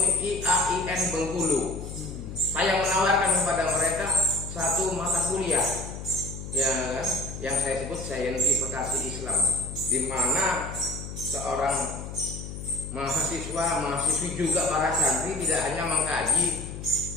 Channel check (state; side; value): noise; left; hum, 9 dB below the sound